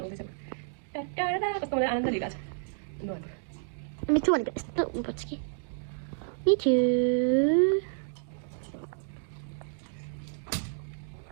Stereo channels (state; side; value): silent; left; digital silence